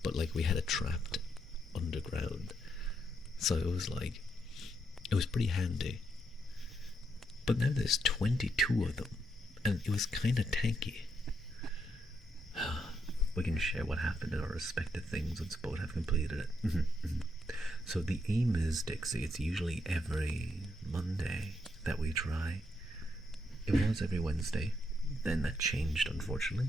but we had it trapped underground, so it was pretty handy. But now there's 22 of them, and it was kind of tanky. We can share what happened in our respective things once both have completed it. So the aim is, Dixie, it's usually every Monday that we try. It was every Wednesday. then that changed,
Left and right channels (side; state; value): both; normal; correlation 0.78